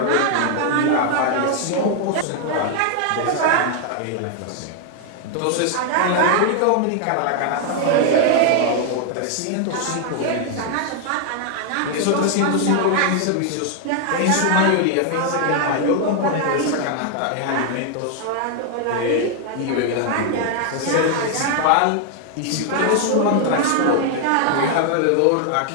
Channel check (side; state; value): both; different; correlation 0.00